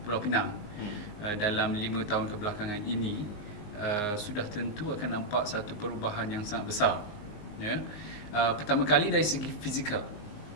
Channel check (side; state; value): right; late; 19 ms